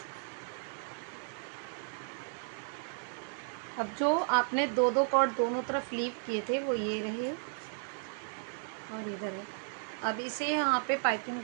अब जो आपने 2 2 कॉर्ड दोनों तरफ लीव किए थे वो ये रहे, और इधर है। अब इसे यहाँ पे पाइपिंग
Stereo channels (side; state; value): left; silent; 55 dB below the other